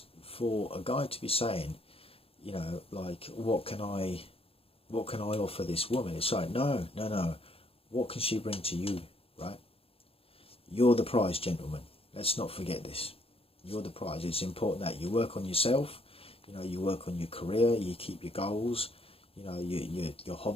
for a guy to be saying, you know, like, what can I offer this woman? It's like, no. What can she bring to you, right? You're the prize, gentlemen. Let's not forget this. You're the prize. It's important that you work on yourself. You know, you work on your career. You keep your goals. You know, your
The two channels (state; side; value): late; right; 0.27 ms